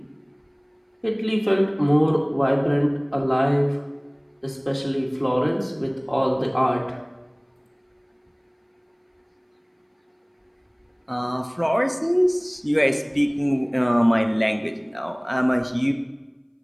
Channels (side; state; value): both; identical; correlation 1.00